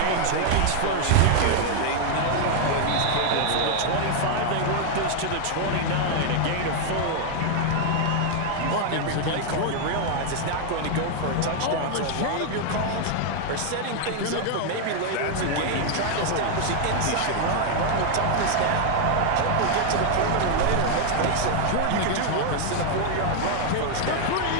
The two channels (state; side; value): different; both; correlation 0.00